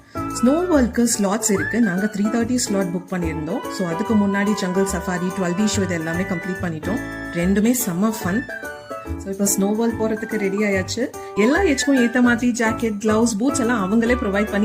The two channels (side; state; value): both; identical; correlation 1.00